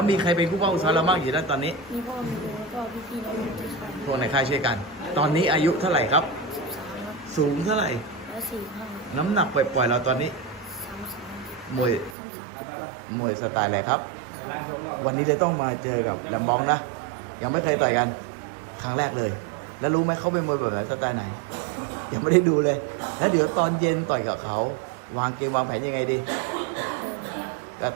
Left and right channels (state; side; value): drops out; left; at 12.2 s